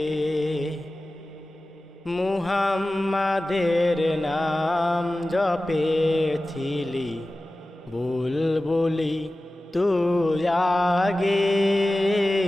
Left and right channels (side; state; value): both; normal; correlation 0.96